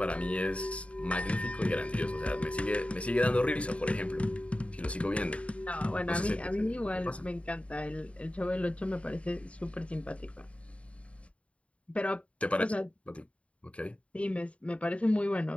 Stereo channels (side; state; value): right; late; 0.062 ms